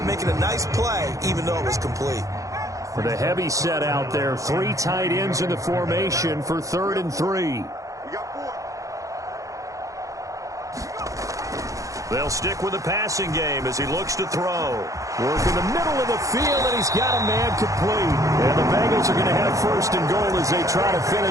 making a nice play, even though it was complete. With a heavy set out there, 3 tight ends in the formation for 3rd and 3. They'll stick with the passing game as he looks to throw. Work in the middle of the field, and he's got a man complete. And the Bengals are going to have 1st and goal as they try to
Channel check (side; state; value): left; late; 0.16 ms